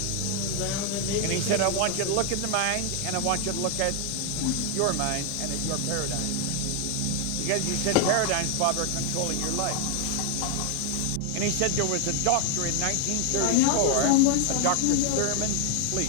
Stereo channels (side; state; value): both; different; correlation 0.01